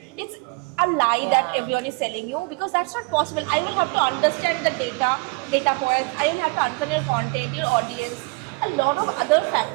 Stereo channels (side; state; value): left; quieter; 30.8 dB